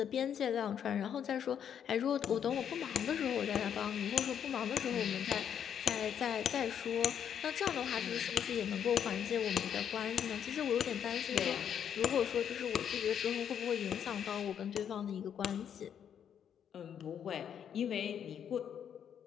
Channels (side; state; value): right; quieter; 8.7 dB